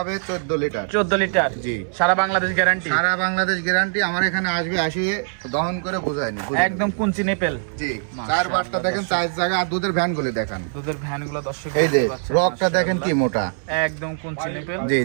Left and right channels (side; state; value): left; silent; digital silence